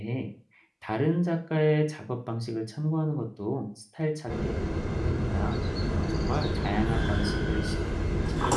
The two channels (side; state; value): both; identical; correlation 1.00